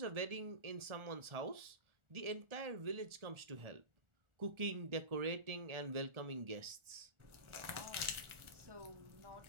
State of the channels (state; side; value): late; left; 1.4 ms